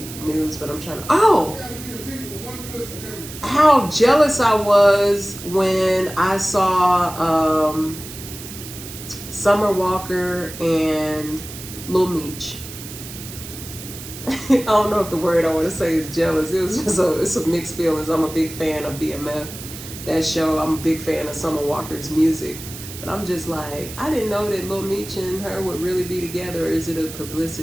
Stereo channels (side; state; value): right; noise; hiss, 12 dB below the sound